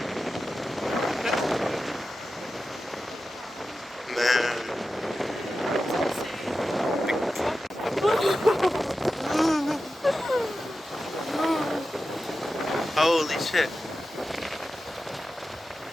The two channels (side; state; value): both; normal; correlation 0.92